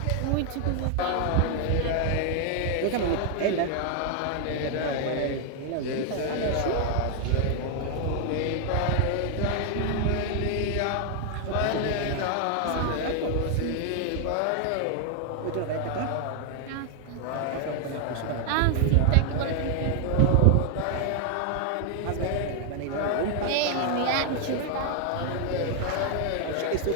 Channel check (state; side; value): different; both; correlation 0.00